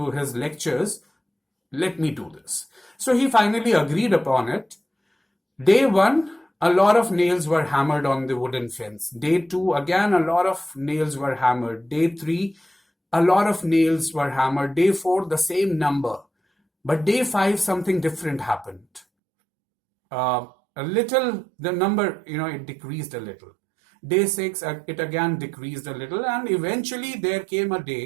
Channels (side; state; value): left; drops out; at 19.0 s